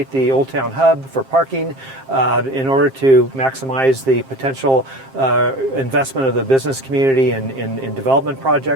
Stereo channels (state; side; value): late; left; 7.5 ms